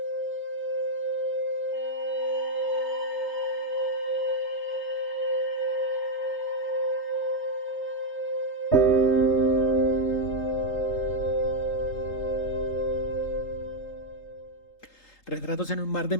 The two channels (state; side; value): late; right; 3.3 ms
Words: Retratos en un mar de